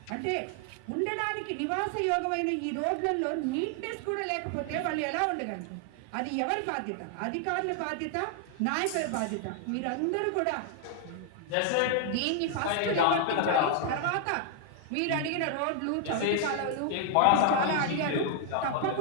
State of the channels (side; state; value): both; different; correlation 0.00